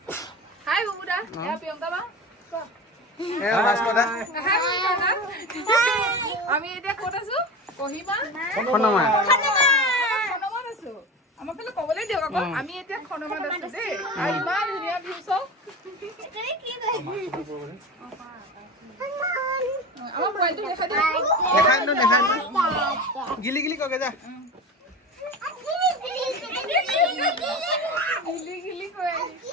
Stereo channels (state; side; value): normal; both; correlation 0.29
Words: হাই বুবুদা এয়া প্ৰিয়ংকা বা এ ভাস্কৰদা হাই বুবুদা আমি এতিয়া ক'ত আছো কহিমা খনমা খনমাত আছো আমাক ফালে ক'বলৈ দিয়ক আকৌ আমি এতিয়া খনমাত আছো দেই আৰু ইমান ধুনীয়া ভিউ চাওক আমার মোবাইলটো দেখা দিও দেখাই ন গিলি গিলি কগে যা গিলি গিলি কই